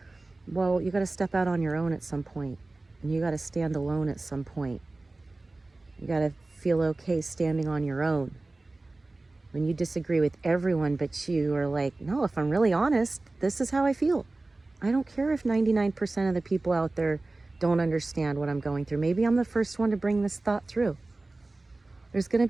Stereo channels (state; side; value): quieter; left; 3.1 dB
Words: Well, you got to step out on your own at some point, and you got to stand alone at some point. You got to feel okay standing on your own. When you disagree with everyone, but you are like, no, if I'm really honest, this is how I feel. I don't care if 99% of the people out there don't understand what I'm going through. Maybe I'm the first one to bring this thought through. There's going to